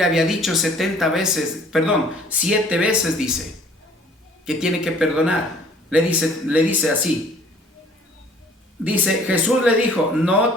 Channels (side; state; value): both; normal; correlation 0.55